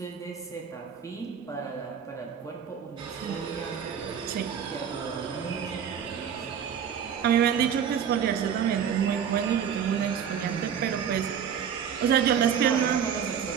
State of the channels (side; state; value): left; quieter; 8.0 dB